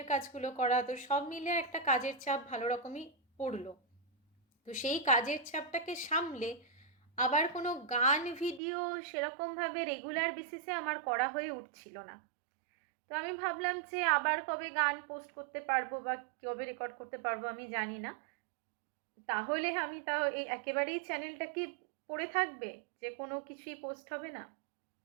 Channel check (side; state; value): left; drops out; at 8.6 s